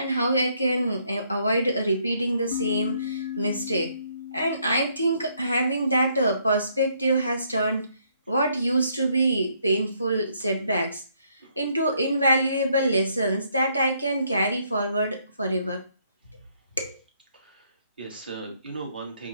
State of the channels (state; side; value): inverted; both; correlation -0.70